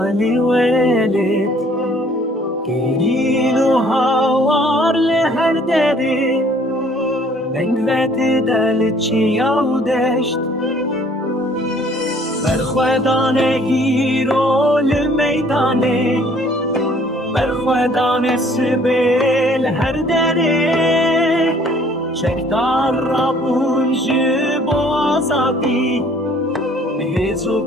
ولید گریلو هوار لهر دری بنگوت دل چیاو دشت برخوادانه گیرو لمیدانه برخوادانه سبیل هر دری شکدار را بونج بازادی مهزو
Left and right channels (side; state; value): both; normal; correlation 0.58